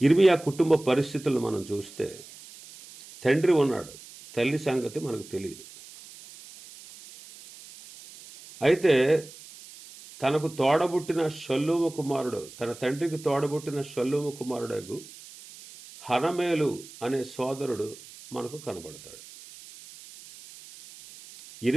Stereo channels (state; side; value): noise; right; hiss, 18 dB below the sound